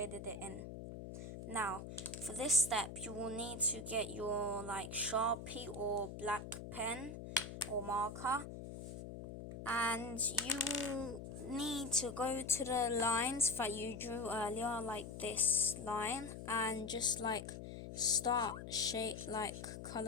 it in. Now, for this step, you will need to get your like Sharpie or black pen or marker, and you will need to go to the lines that you drew earlier, like this line, and just like start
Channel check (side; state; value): left; noise; hum, 9 dB below the sound